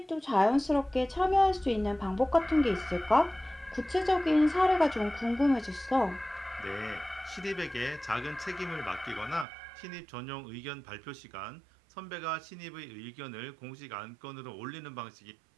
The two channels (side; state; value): left; drops out; at 9.5 s